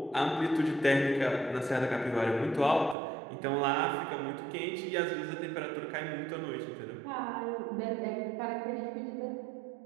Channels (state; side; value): drops out; left; at 3.0 s